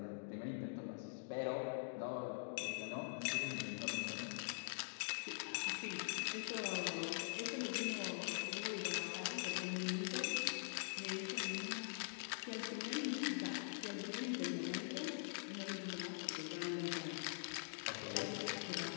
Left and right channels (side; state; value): right; silent; digital silence